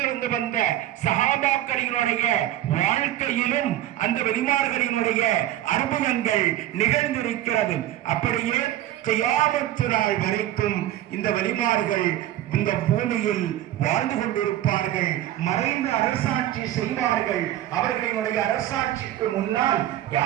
வந்த சஹாபாக்களினுடைய வாழ்க்கையிலும் அந்த வலிமார்களினுடைய அற்புதங்கள் நிகழ்ந்திருக்கிறது. அப்படியே கியாமத்து நாள் வரைக்கும் இந்த வலிமார்கள் இந்த பூமியில் வாழ்ந்து கொண்டிருப்பார்கள். மறைந்த அரசாட்சி செய்வார்கள். அவர்களினுடைய அரசாட்சிக்கு முன்னால்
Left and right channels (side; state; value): left; quieter; 13.3 dB